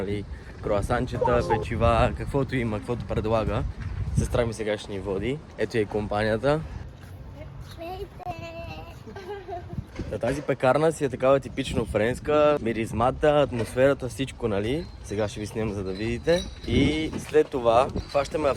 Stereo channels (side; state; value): both; identical; correlation 1.00